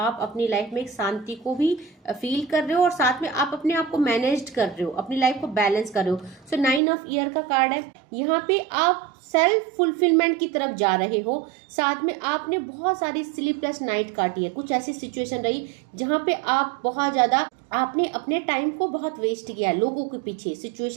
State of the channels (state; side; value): drops out; left; at 6.8 s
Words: अपनी लाइफ में एक शांति को भी फील कर रहे हो, और साथ में आप अपने आप को मैनेज कर रहे हो, अपनी लाइफ को बैलेंस कर रहे हो। सो 9 ऑफ ईयर का कार्ड है। यहाँ पे आप सेल्फ फुलफिलमेंट की तरफ जा रहे हो। साथ में आपने बहुत सारी स्लीपलेस नाइट काटी है, कुछ ऐसी सिचुएशन रही जहां पे आप बहुत ज्यादा, आपने अपने टाइम को बहुत वेस्ट किया लोगों के पीछे,